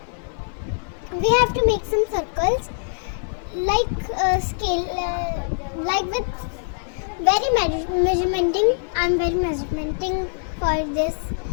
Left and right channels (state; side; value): silent; right; digital silence